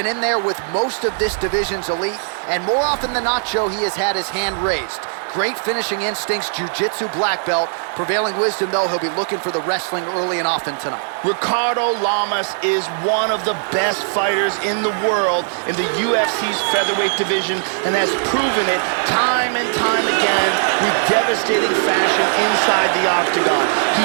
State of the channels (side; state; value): left; silent; 66 dB below the other